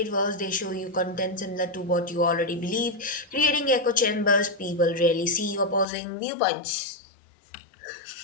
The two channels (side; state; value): right; drops out; at 5.9 s